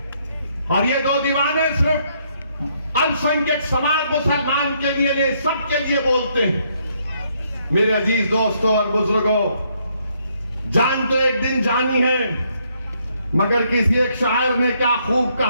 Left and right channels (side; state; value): both; inverted; correlation -0.71